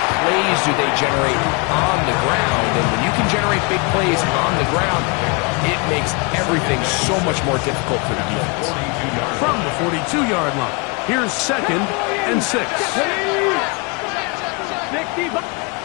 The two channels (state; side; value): quieter; right; 31.1 dB